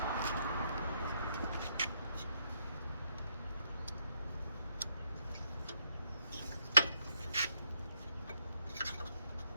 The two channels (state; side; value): inverted; both; correlation -0.73